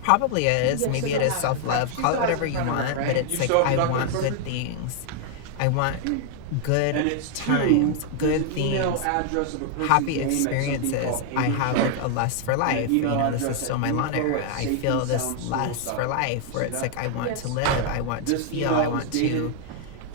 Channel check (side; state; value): both; different; correlation 0.00